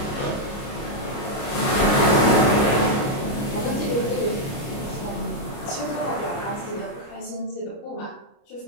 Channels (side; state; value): right; late; 30 ms